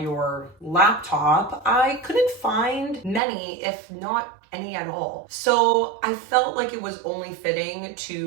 laptop, I couldn't find many, if not any at all. So I felt like it was only fitting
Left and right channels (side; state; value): left; drops out; at 3.2 s